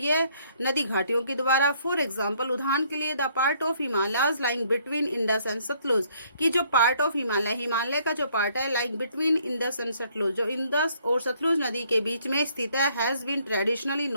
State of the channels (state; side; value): inverted; both; correlation -0.65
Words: नदी घाटियों के द्वारा। फॉर एग्जाम्पल, उदाहरण के लिए the part of Himalayas lying between Indus and Sutlej, कि जो पार्ट ऑफ हिमालय का जो पार्ट है like between Indus and Sutlej, जो इंडस और सतलुज नदी के बीच में स्थित है, has been traditionally